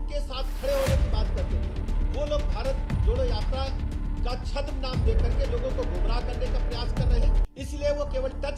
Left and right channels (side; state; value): both; identical; correlation 1.00